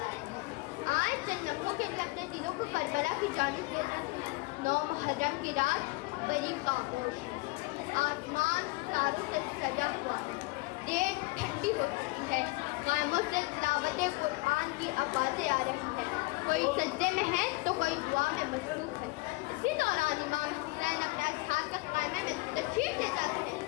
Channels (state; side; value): quieter; right; 24.4 dB